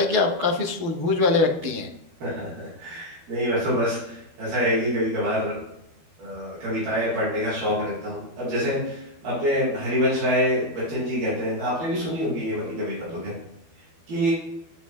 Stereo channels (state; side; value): late; left; 12 ms